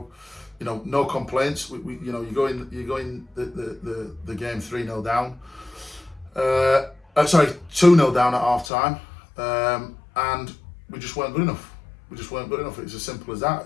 you know, no complaints. You know, you go in the game 3-0 down. 2-0 down at half time, and we just weren't good enough. It's as simple as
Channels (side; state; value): right; drops out; at 8.7 s